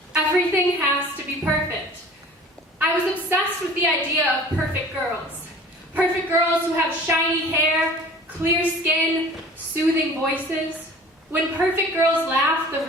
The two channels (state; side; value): normal; both; correlation 0.45